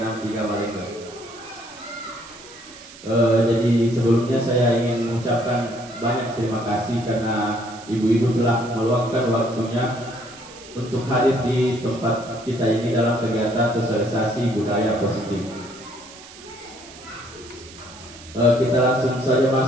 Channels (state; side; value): noise; right; hiss, 18 dB below the sound